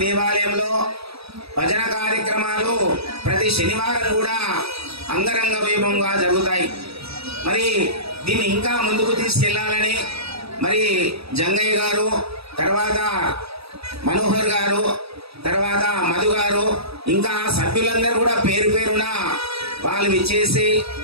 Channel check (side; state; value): left; late; 0.77 ms